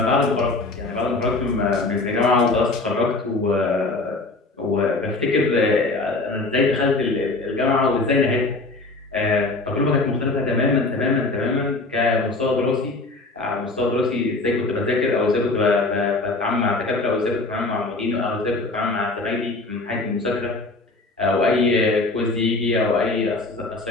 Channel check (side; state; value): right; quieter; 3.3 dB